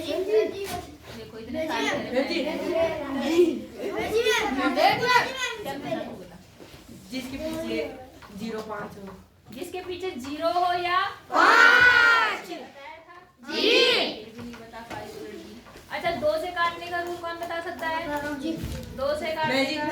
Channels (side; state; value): both; identical; correlation 1.00